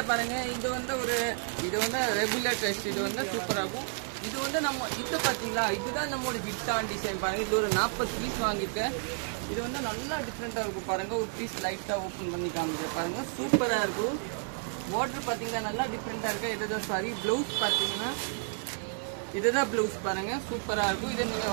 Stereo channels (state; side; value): silent; left; 57 dB below the other